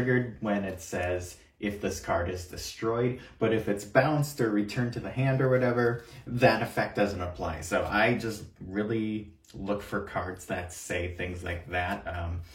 when it says if this card is destroyed, but if it's bounced or returned to the hand or whatever, that effect doesn't apply. So I just really look for cards that say things like that.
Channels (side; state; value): both; identical; correlation 1.00